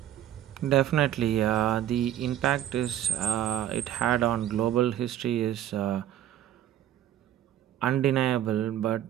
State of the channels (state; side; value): quieter; left; 11.6 dB